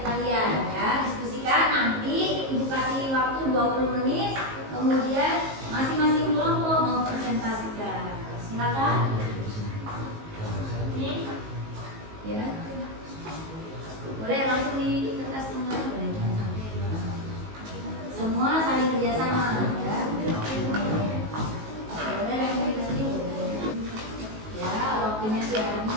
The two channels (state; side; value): late; left; 19 ms